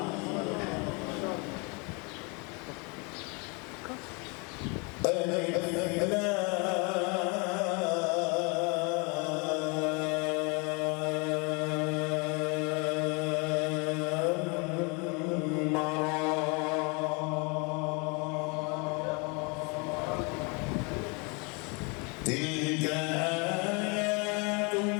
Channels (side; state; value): right; quieter; 31.7 dB